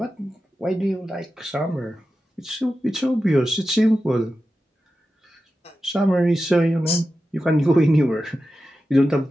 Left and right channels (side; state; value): both; normal; correlation 0.92